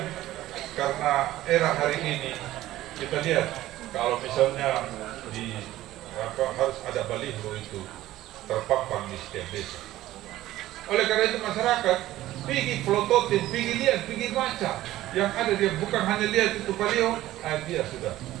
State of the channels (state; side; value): quieter; left; 15.1 dB